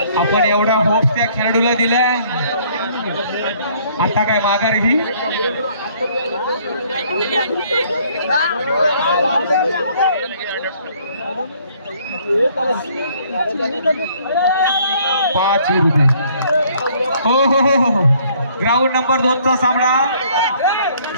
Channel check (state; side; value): inverted; both; correlation -0.61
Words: आपण एवढा होप्स त्या खेळाडूला दिलाय, आता काय माघार घे. पाच विरुद्ध. हो हो हो हो. ग्राउंड नंबर 2 चा सामना